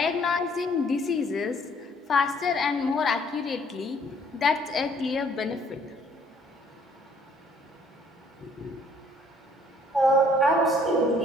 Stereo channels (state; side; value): normal; both; correlation 0.61